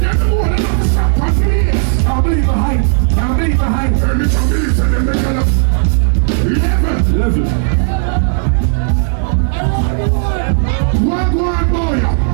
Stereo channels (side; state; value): left; silent; digital silence